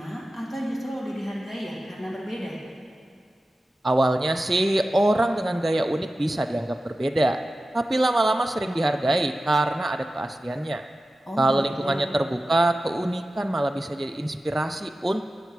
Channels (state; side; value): normal; both; correlation 0.94